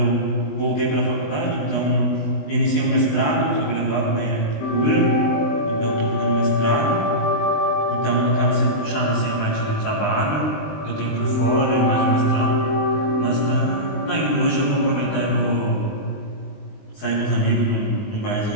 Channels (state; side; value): late; right; 20 ms